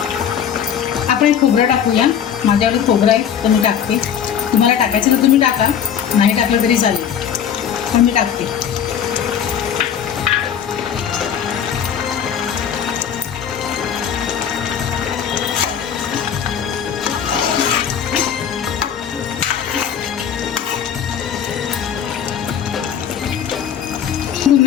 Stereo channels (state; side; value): quieter; right; 8.5 dB